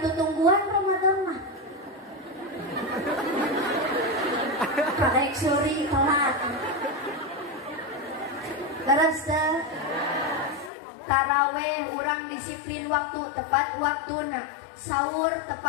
Ramadan mah. Karek suri telat. Terus taraweh urang disiplin waktu tepat waktuna. Sahur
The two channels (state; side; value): drops out; right; at 10.7 s